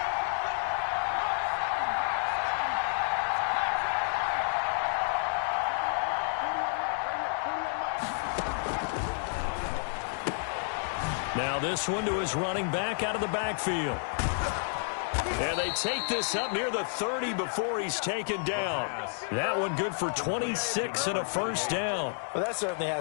Now this one to his running back out of the backfield. And they take this up near the 30 before he's taken down. That one good for 26 and a 1st down. Well, that certainly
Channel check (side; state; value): right; silent; digital silence